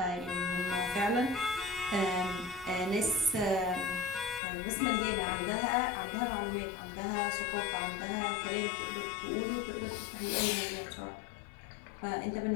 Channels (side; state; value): right; drops out; at 4.4 s